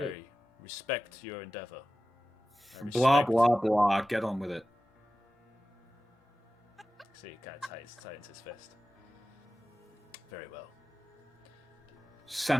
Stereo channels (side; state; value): both; normal; correlation 0.95